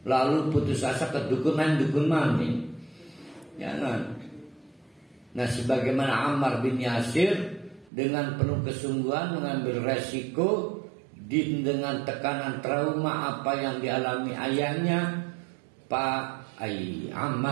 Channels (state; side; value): drops out; left; at 7.9 s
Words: lalu putus asa ke dukun mani. Jangan. Nah, sebagaimana Ammar bin Yasir dengan penuh kesungguhan mengambil resiko dengan tekanan trauma apa yang dialami ayahnya Pak